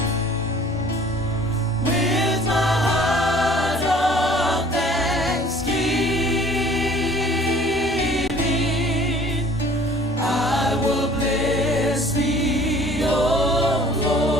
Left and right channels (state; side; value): normal; both; correlation 0.52